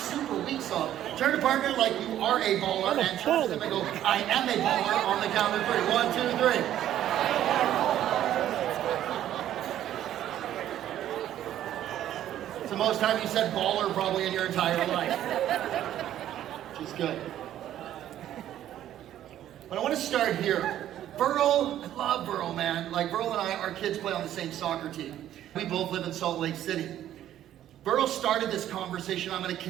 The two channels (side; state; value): left; quieter; 11.9 dB